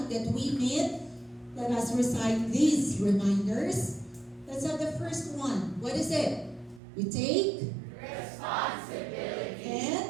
that we meet. Let us recite these reminders. Let's have the first one. What is it? We take responsibility.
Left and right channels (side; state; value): left; drops out; at 6.8 s